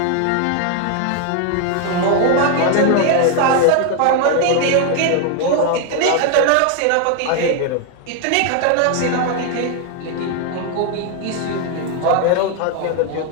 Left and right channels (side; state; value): both; different; correlation 0.01